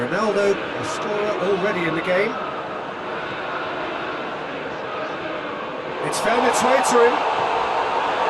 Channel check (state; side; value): identical; both; correlation 1.00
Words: a scorer already in the game. It's found its way to him.